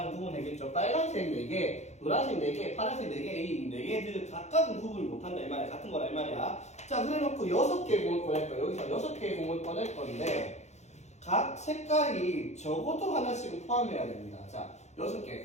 구분되겠죠. 빨간색 4개, 노란색 4개, 파란색 4개, 이 4개들 각각은 구분을 못한다 이 말이야. 같은 거라 이 말이야. 자, 그래놓고 6개의 공을 꺼낼 거야. 여기서 6개의 공을 꺼낼 건데 각 색깔이 적어도 하나씩은 포함해야 됩니다. 자, 6개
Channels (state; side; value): late; right; 0.33 ms